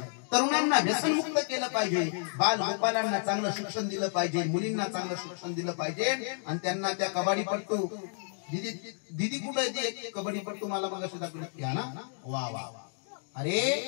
तरुणांना व्यसनमुक्त केलं पाहिजे, बाल गोपालांना चांगलं शिक्षण दिलं पाहिजे, मुलींना चांगलं शिक्षण दिलं पाहिजे आणि त्यांना त्या कबड्डीपट्टू दीदी कुठे आहे कबड्डीपट्टू मला मग अशी दाखवली ना. वा वा अरे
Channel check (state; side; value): silent; right; digital silence